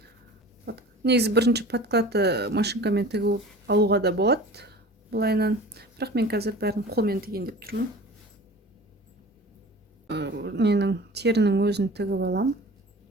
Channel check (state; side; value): normal; both; correlation 0.40